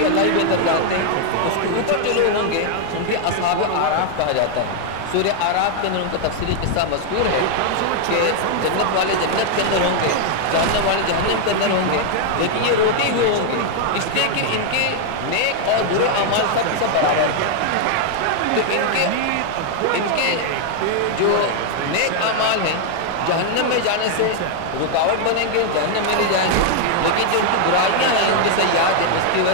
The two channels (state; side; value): different; both; correlation 0.00